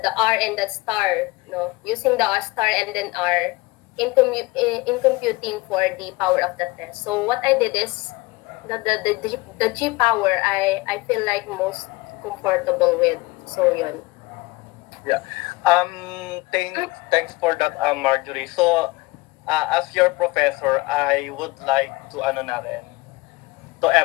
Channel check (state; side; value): quieter; right; 22.4 dB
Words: R and the star, no, using the star and then R in computing for the power of the test. So what I did is the G power I feel like most comfortable with. So yun. Yeah. Thanks for that, Marjorie. So, as your professor, I would like to to